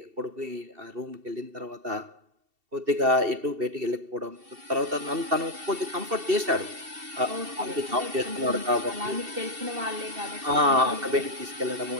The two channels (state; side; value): late; left; 2.7 ms